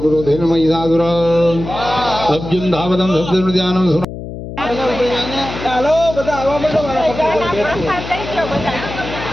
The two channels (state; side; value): noise; left; hum, 10 dB below the sound